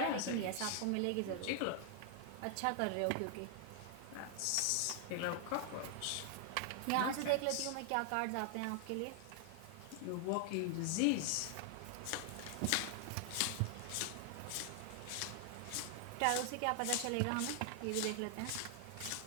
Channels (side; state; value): both; different; correlation 0.00